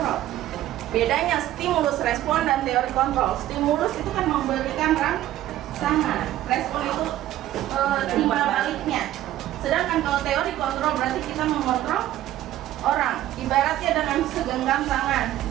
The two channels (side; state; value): left; quieter; 13.8 dB